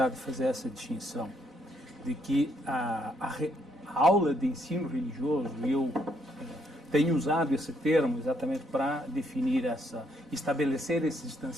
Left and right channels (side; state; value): both; normal; correlation 0.72